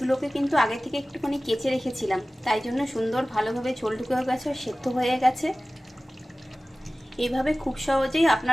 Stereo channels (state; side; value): normal; both; correlation 0.97